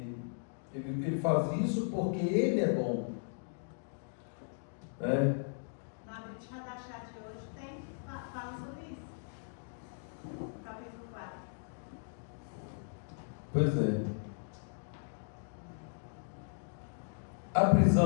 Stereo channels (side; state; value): right; silent; digital silence